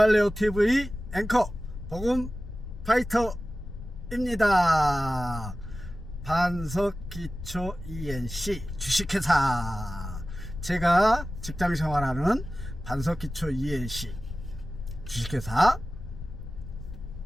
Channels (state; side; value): noise; left; rumble, 10 dB below the sound